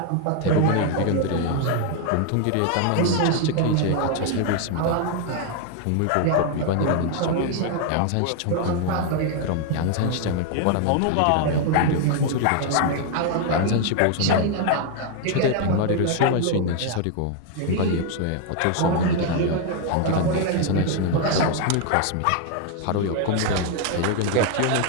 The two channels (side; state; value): both; different; correlation 0.00